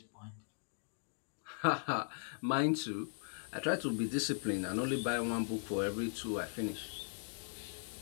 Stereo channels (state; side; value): silent; right; digital silence